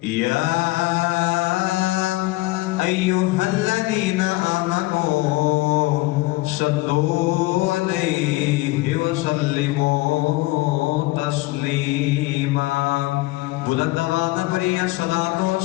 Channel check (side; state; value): right; quieter; 20.3 dB